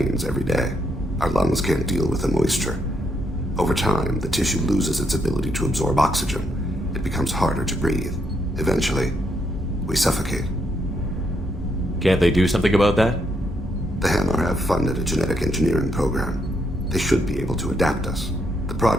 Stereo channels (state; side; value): normal; both; correlation 0.76